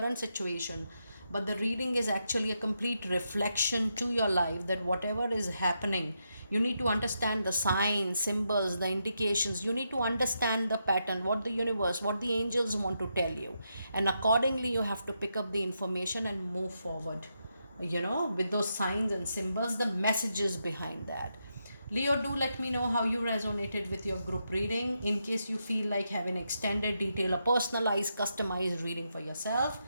situation, but the reading is actually a complete reflection to your life, that whatever is happening, you need to understand the signs, symbols, the indications. You need to understand the pattern, what the universe, what the angels want to tell you, and accordingly you have to pick up the information and move forward, with those signs and symbols, the messages behind that. Leo, do let me know how you resonated with your group reading. In case you feel like having extended detail, a personalized, customized reading for yourself,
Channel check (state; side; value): inverted; both; correlation -0.83